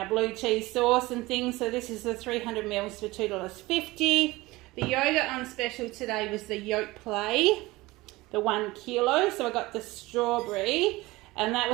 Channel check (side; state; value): left; quieter; 20.4 dB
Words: blue cheese sauce and things. So this is the 300 mils for $2.50. The yogurt on special today was the Yoke Play, the 1 kilo. So I got the strawberry and that